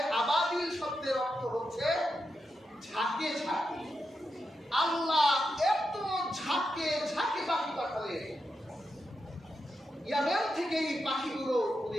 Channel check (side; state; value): both; normal; correlation 0.86